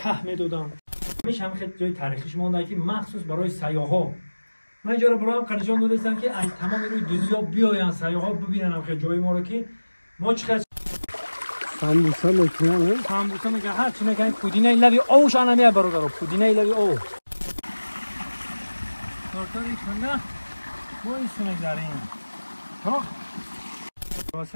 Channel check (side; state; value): both; inverted; correlation -1.00